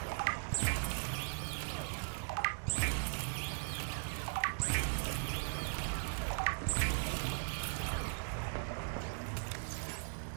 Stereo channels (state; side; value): silent; left; 52 dB below the other